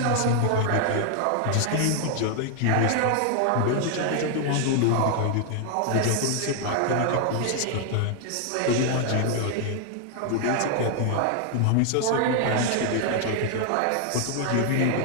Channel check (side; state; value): both; different; correlation 0.00